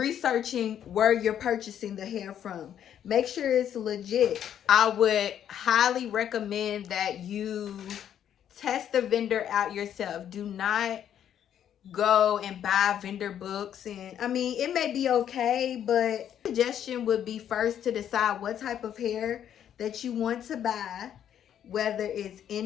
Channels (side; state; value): right; quieter; 9.8 dB